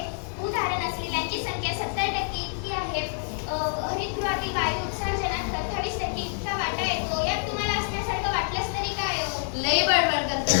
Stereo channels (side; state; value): right; silent; 60 dB below the other